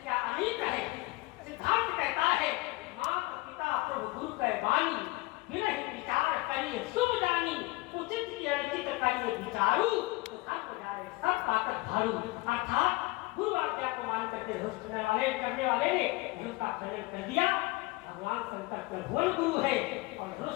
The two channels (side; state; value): right; quieter; 21.9 dB